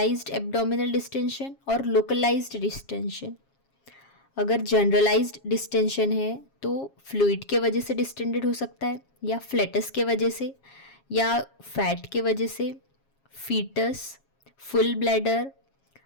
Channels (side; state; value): right; late; 7.3 ms